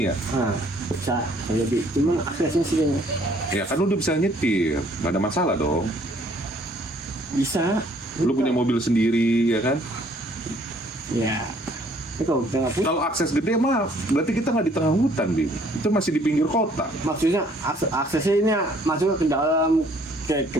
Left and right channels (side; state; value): both; normal; correlation 0.61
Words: ya. Bisa jadi. Cuman aksesnya sih kayaknya. Ya kan lu udah bisa nyetir, nggak ada masalah dong. Bisa. Lu punya mobil sendiri ya kan? Ya. Itu kalau kita nggak punya. Kalau akses gede mah berarti kita nggak di tengah hutan, Bim. Itu masih di pinggir kota. Maksudnya aksesnya ini masuk ke dalam kayak